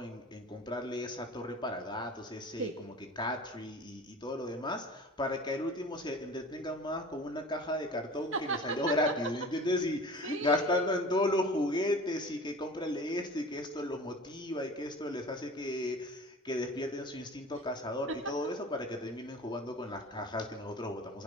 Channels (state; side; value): normal; both; correlation 0.40